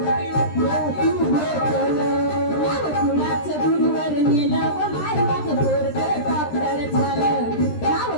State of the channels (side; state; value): right; late; 13 ms